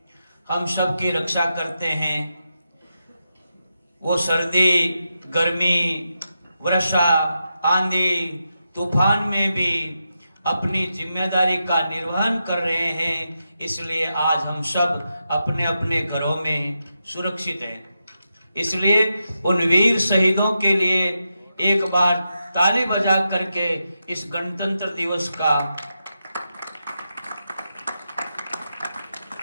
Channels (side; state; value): both; inverted; correlation -0.87